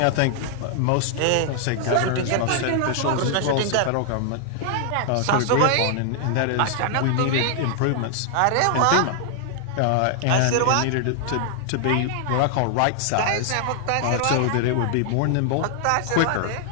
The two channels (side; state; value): both; different; correlation 0.00